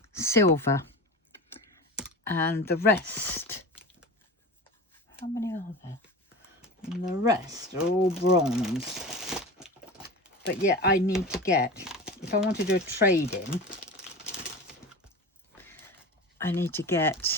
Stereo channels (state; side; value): normal; both; correlation 0.30